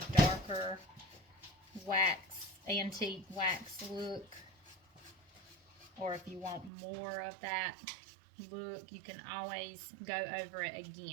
darker wax, antique wax look. Or if you want more of that look, you can always go over it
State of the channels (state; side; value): drops out; left; at 6.7 s